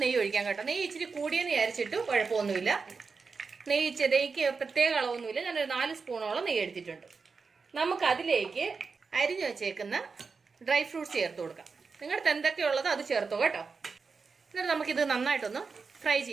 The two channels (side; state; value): left; quieter; 4.8 dB